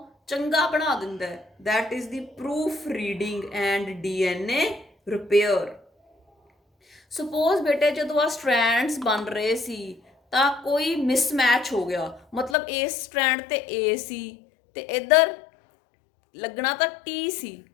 ਚੰਗਾ ਬਣਾ ਦਿੰਦਾ, that is the proof reading and DNA repair. Suppose ਬੇਟੇ ਜਦੋਂ ਆ ਸਟ੍ਰੈਂਡਸ ਬਣ ਰਹੇ ਸੀ ਤਾਂ ਕੋਈ ਮਿਸਮੈਚ ਹੋ ਗਿਆ, ਮਤਲਬ ਇਸ ਸਟ੍ਰੈਂਡ ਤੇ ਏ ਸੀ ਤੇ ਇੱਧਰ ਲੱਗਣਾ ਤਾਂ ਟੀ ਸੀ,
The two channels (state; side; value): drops out; right; at 12.6 s